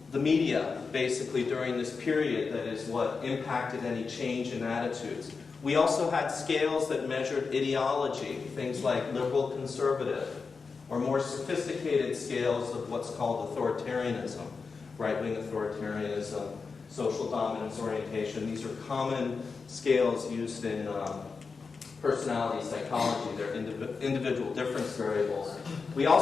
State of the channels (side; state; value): right; quieter; 4.8 dB